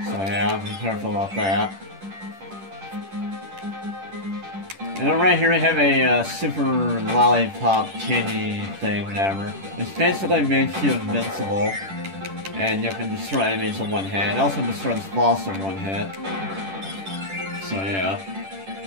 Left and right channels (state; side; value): late; left; 10 ms